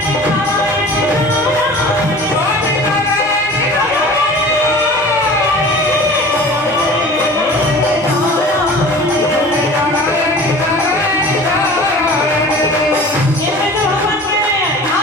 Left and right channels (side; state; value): both; normal; correlation 0.42